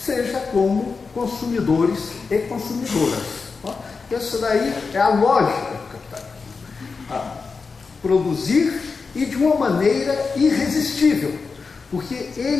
como consumidores e consumidoras. Essa daí é a lógica do capitalismo. Produzir e de uma maneira irresistível, porque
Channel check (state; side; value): quieter; right; 4.7 dB